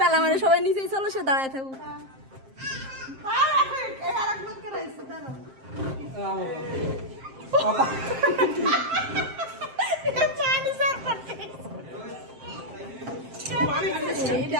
আমাদের সবাই নিচেই চলো সে দাঁড়ায় থাকুক আরেকবার করাইছে দাঁড়াও আমার বাবা জানি স্যার করতে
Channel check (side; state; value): left; late; 7.5 ms